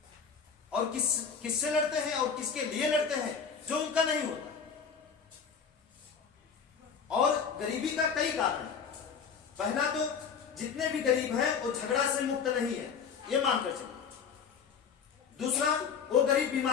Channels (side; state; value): right; quieter; 6.4 dB